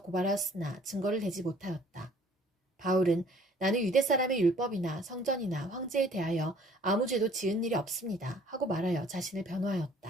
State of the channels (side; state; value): both; normal; correlation 0.56